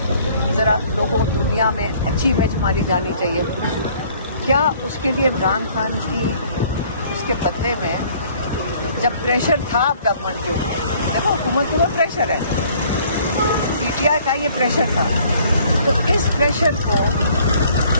ذرا لوگوں دنیا میں اچھی امیج ہماری جانی چاہیے. کیا اس کے لیے عمران خان کی اس کے بدلے میں جب پریشر تھا گورنمنٹ کے اوپر، دیکھو حکومت کے اوپر پریشر ہے، پی ٹی آئی کا یہ پریشر تھا، تو اس پریشر کو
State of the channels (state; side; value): inverted; both; correlation -0.57